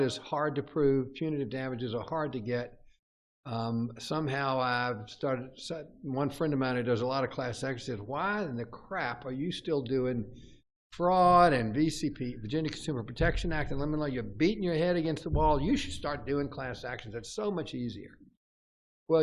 hard to prove. Punitive damages are hard to get. Somehow I've started. One friend of mine who does a lot of class actions says, "Why in the crap are you still doing fraud and VCP, Virginia Consumer Protection Act, and lemon law? You're beating your head against the wall. You should start doing class actions. It's so much easier."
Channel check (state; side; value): identical; both; correlation 1.00